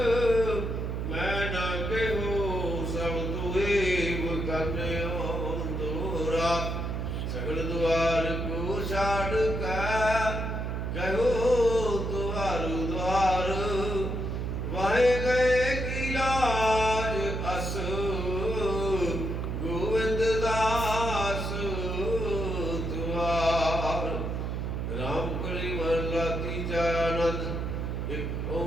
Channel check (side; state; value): right; noise; hum, 2 dB below the sound